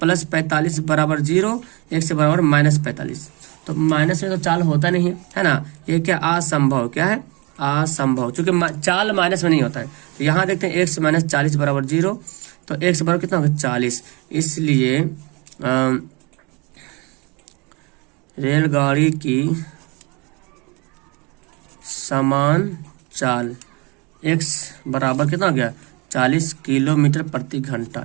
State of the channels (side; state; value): left; quieter; 27.9 dB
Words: 45 बराबर 0, 1 से बराबर -45। तो माइनस में तो चाल होता नहीं है ना, ये क्या असंभव, क्या है असंभव, चूंकि चाल माइनस में नहीं होता है। तो यहाँ देखते हैं 1 से -40 बराबर 0, तो 1 से बराबर कितना होगा 40। इसलिए रेलगाड़ी की समान चाल, x बराबर कितना हो गया 40 किलोमीटर प्रति घंटा।